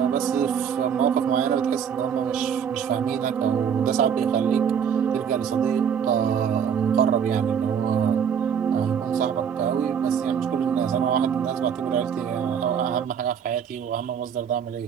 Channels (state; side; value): quieter; left; 7.7 dB